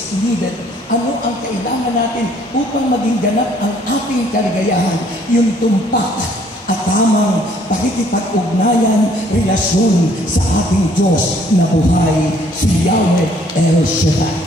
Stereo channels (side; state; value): both; normal; correlation 0.62